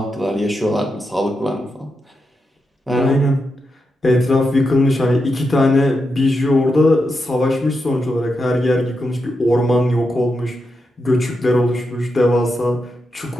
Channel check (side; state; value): both; normal; correlation 0.86